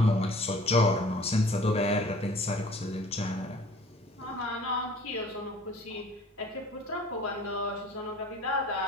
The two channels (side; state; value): both; normal; correlation 0.49